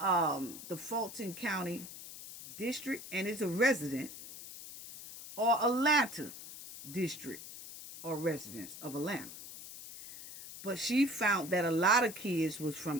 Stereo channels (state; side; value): noise; left; hiss, 13 dB below the sound